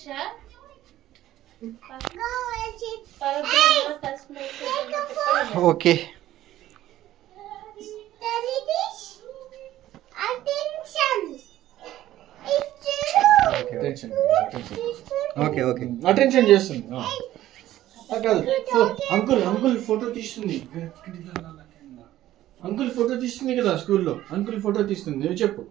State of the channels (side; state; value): left; quieter; 13.9 dB